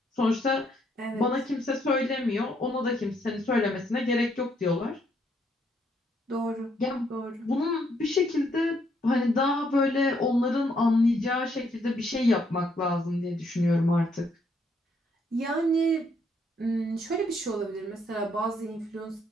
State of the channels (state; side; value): normal; both; correlation 0.71